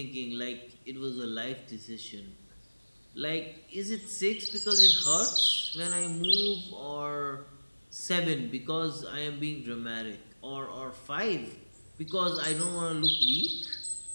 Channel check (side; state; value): both; inverted; correlation -1.00